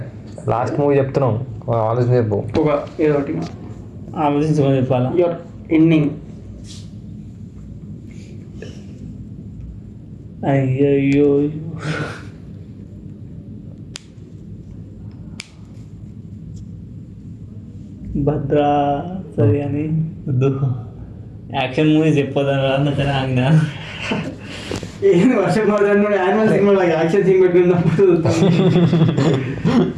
లాస్ట్ మూవీ చెప్తున్నాం, ఆలోచన చెప్పు. ఒక ఏదో ఒకటి ఆలోచించుకొని చెప్పాలా. Your ending. అయ్యయ్యో భద్రా సరే అని వద్దు. యాక్షన్ మూవీస్ చెప్పొద్దని రాదని ఆగిన. ఏంది వర్షం పడుతుంది యానిమల్ సినిమా యాక్షన్ సీన్ పెట్టుకున్నప్పుడు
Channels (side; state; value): both; identical; correlation 1.00